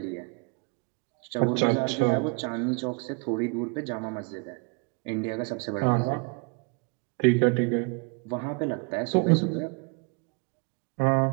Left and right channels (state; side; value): quieter; left; 32.5 dB